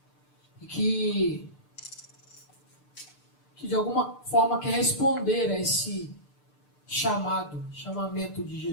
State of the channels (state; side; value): late; right; 6.7 ms